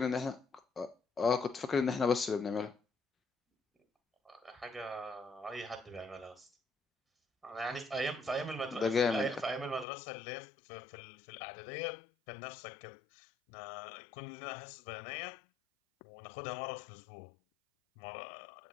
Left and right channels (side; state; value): right; drops out; at 9.9 s